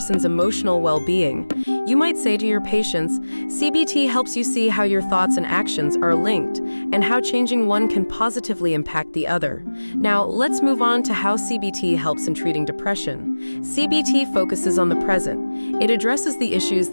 emotional well-being. You might say to your patients, CBT helps you see how your thoughts and actions are linked, and how changing one can positively impact the other. Now, let's move on to how CBT helps in treating depression. CBT focuses on the present. It addresses the issues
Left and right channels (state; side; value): inverted; both; correlation -1.00